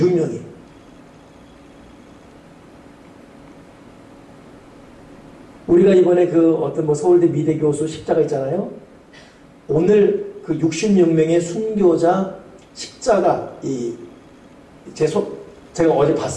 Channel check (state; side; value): identical; both; correlation 1.00